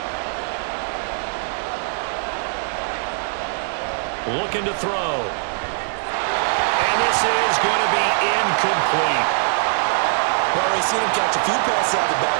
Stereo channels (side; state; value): left; silent; 64 dB below the other